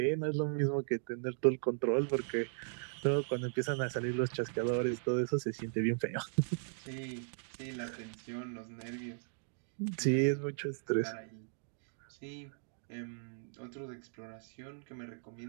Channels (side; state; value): left; silent; digital silence